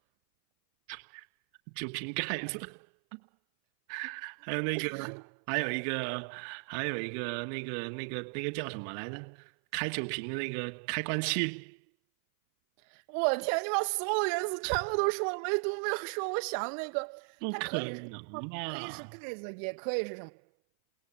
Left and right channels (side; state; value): left; silent; 54 dB below the other